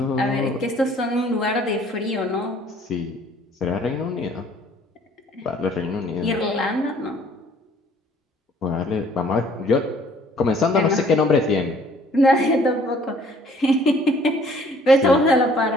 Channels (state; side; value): normal; both; correlation 0.58